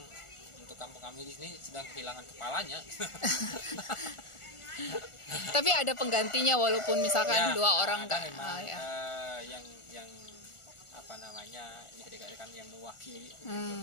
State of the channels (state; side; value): late; right; 1.4 ms